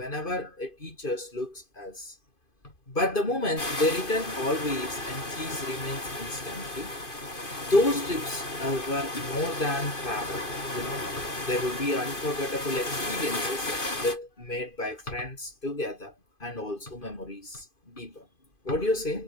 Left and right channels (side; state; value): right; late; 2.5 ms